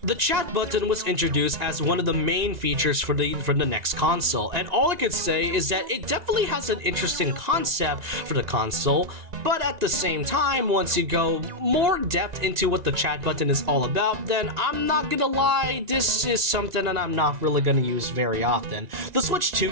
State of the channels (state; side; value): late; left; 1.9 ms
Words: the chat button was introduced as one of the main features for the next console, and all I could say is that it definitely has an interesting concept for the console, but at the same time, once you go more depth into what the chat button is all about, then I'm not gonna lie, this is something that I'm not really gonna use very often. The Switch